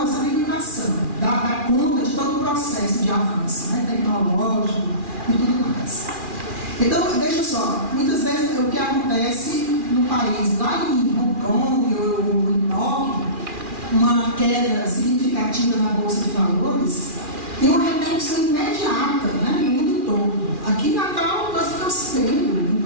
limitação, dá conta de todo o processo de avanço, né? Tecnológico e tudo mais. Então, veja só, muitas vezes o que acontece no país, lá em Hong Kong ou em Tóquio, uma queda significativa na Bolsa de Valores, tem uma repercussão imediata, né, no mundo todo. Aqui em Natal, nós estamos tendo,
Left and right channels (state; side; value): late; left; 2.4 ms